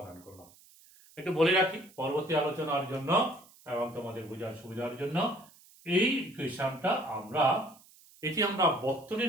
করলাম। একটু বলে রাখি পরবর্তী আলোচনার জন্য এবং তোমাদের বোঝার সুবিধার জন্য, এই ইকুয়েশনটা এটি আমরা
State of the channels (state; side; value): noise; right; hiss, 25 dB below the sound